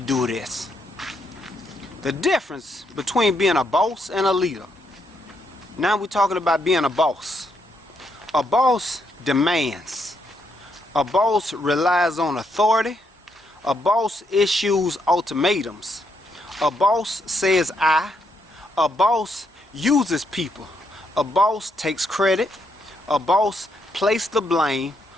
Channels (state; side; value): normal; both; correlation 0.77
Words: do this. The difference between being a boss and a leader. Now we're talking about being a boss. A boss demands. A boss relies on authority. A boss issues ultimatums. A boss says I. A boss uses people. A boss takes credit. A boss places the blame.